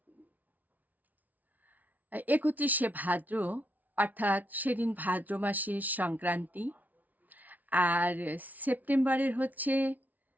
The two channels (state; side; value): late; left; 0.076 ms